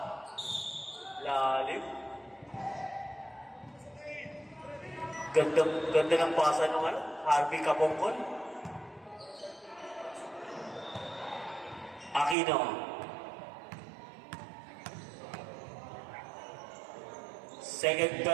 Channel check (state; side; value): drops out; left; at 12.4 s